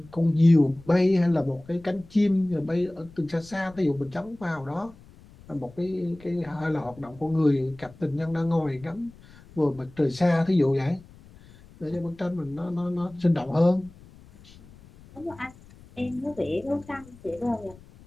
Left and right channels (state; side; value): noise; left; rumble, 23 dB below the sound